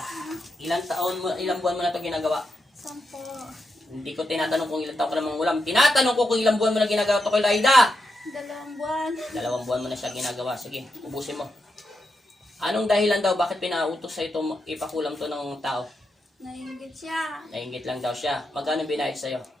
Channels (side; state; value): both; normal; correlation 0.85